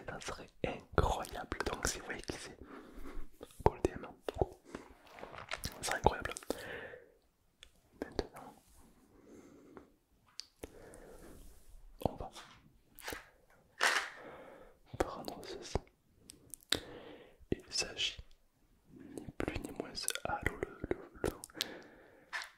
Ça serait incroyable. Donc si vous voyez qui c'est, go le DM. C'est incroyable. Maintenant, on va prendre ceci. Il s'agit ni plus ni moins. Allô,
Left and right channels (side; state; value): both; identical; correlation 1.00